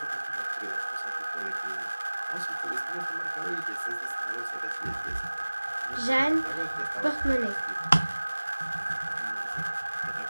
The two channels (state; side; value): inverted; both; correlation -1.00